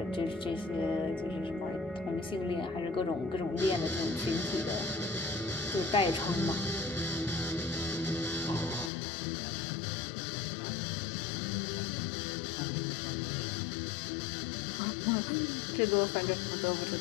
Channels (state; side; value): drops out; right; at 8.9 s